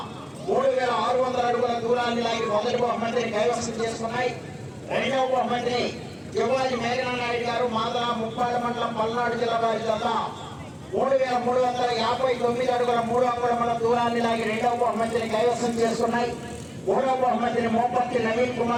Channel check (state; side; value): identical; both; correlation 1.00